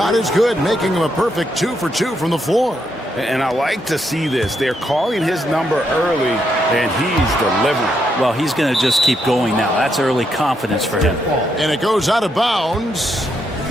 is good, making him a perfect 2 for 2 from the floor. And I like to see this. They're calling his number early, and he's delivering. Well, he's going to just keep going now. That's early confidence for him. And it goes out of bounds.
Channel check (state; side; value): normal; both; correlation 0.78